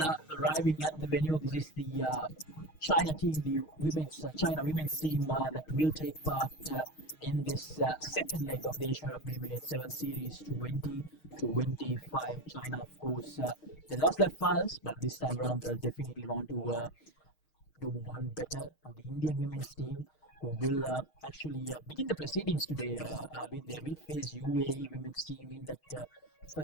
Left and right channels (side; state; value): right; late; 6.4 ms